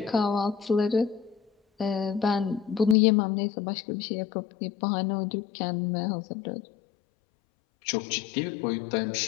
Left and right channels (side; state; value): right; drops out; at 3.0 s